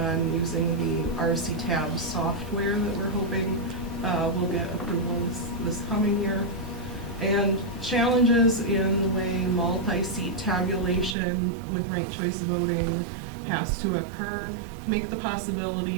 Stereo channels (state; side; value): drops out; left; at 11.2 s